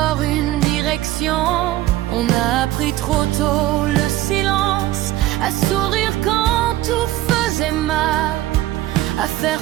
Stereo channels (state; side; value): quieter; left; 15.3 dB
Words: une direction. On a appris trop tôt le silence, à sourire quand tout faisait mal, à